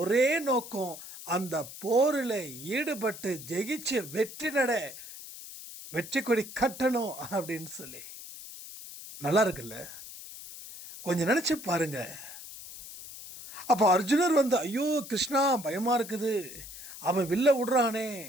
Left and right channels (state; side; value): noise; left; hiss, 13 dB below the sound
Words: ஒரே நோக்கம் அந்த போரில் ஈடுபட்டு ஜெயிச்சு வெற்றி கொடி கட்டணும் அப்படின்னு சொல்லி. நல்லா இருக்குல்ல? கொஞ்சம் நினைச்சு பாருங்க. அப்போ அர்ஜுனர் ஐயோ கிருஷ்ணா பயமா இருக்குது, அவன் வில்ல விடுறானே,